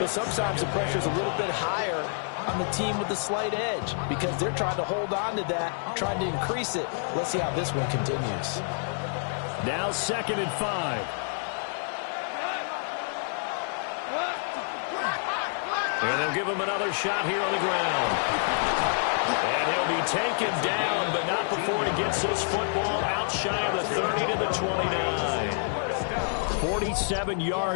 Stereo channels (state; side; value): silent; right; digital silence